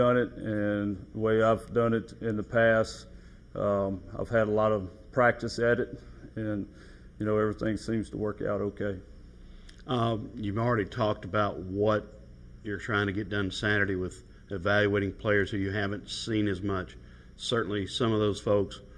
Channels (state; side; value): identical; both; correlation 1.00